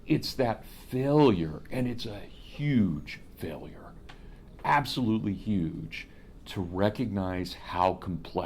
It's that failure, and it's a huge failure, absolutely huge, to recognize how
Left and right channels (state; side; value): identical; both; correlation 1.00